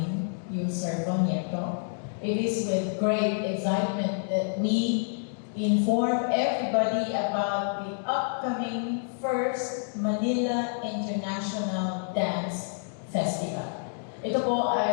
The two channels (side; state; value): right; silent; digital silence